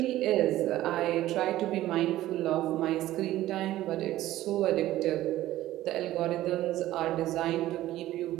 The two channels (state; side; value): quieter; left; 14.9 dB